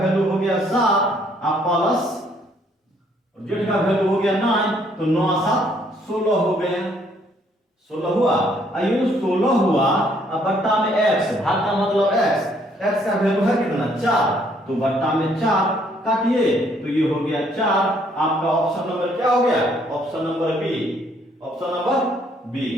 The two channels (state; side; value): normal; both; correlation 0.66